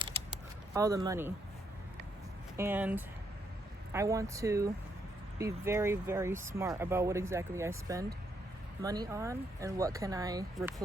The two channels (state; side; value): normal; both; correlation 0.76